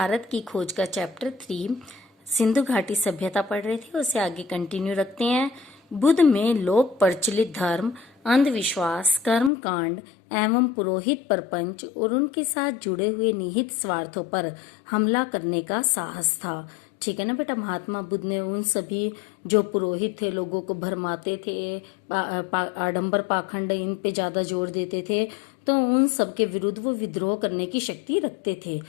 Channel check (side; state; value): right; drops out; at 9.5 s